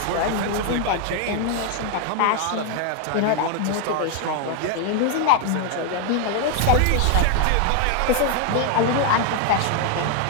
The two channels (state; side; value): different; both; correlation 0.00